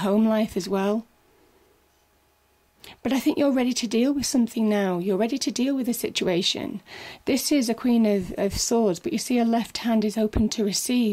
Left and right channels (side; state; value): both; identical; correlation 1.00